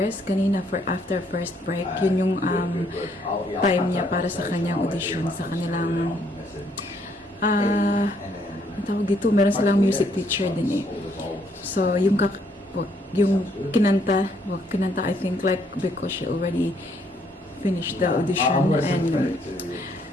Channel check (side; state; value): both; normal; correlation 0.69